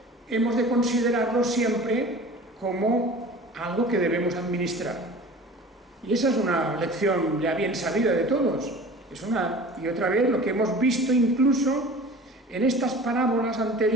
hemos de considerarlo siempre como algo que debemos administrar. Y esa es una lección ya bien sabida de todos. Es una y otra vez lo que hemos visto incluso en estas parábolas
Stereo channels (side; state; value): both; normal; correlation 0.41